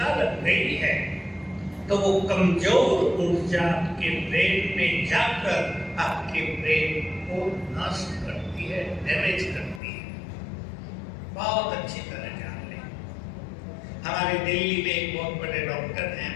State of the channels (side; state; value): right; drops out; at 9.8 s